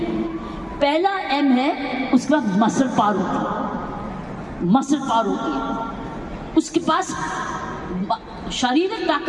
पहला M है, उसका मसल पावर होती है, मसल पावर होती है, उसके पास शारीरिक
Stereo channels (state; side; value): identical; both; correlation 1.00